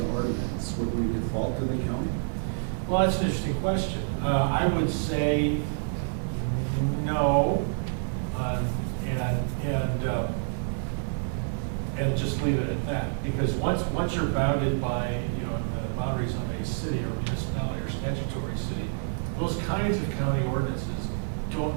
ordinance, would we default to the county? Well, that's an interesting question. I would say no, and just leave it at that. Because once you're bounded by the boundaries of a city or municipality or statutory city, those kinds of county ordinances don't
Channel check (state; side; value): silent; left; 58 dB below the other